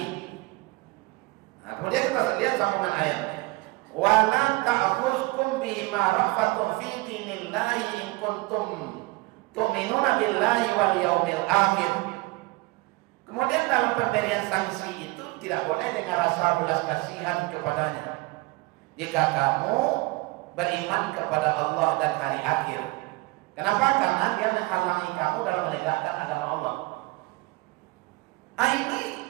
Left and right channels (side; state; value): left; quieter; 23.2 dB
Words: Nah, kemudian kita lihat sambungan ayatnya. Wala ta'khuzkum bima rafatun fi dinillahi in kuntum tu'minuna billahi wal yaumil akhir. Kemudian dalam pemberian sanksi itu tidak boleh dengan rasa belas kasihan kepadanya. Jika kamu beriman kepada Allah dan hari akhir. Kenapa? Karena dia menghalangi kamu dalam menegakkan agama Allah. Ini